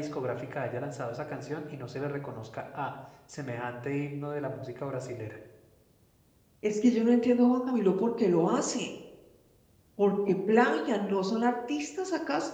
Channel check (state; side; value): identical; both; correlation 1.00